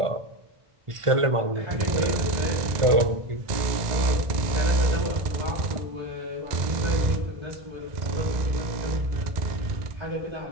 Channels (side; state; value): left; late; 1.9 ms